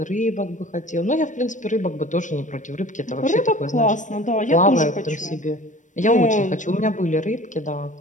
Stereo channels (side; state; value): right; late; 0.37 ms